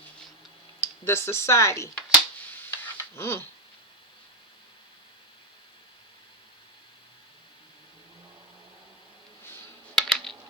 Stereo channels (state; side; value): normal; both; correlation 0.08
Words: The society. Oh